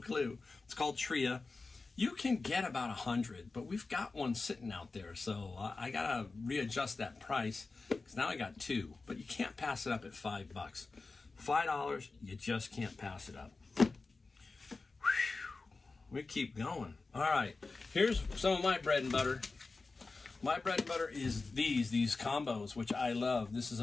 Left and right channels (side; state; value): right; quieter; 3.8 dB